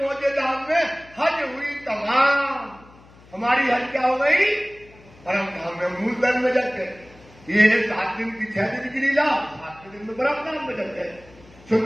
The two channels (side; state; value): left; noise; hum, 24 dB below the sound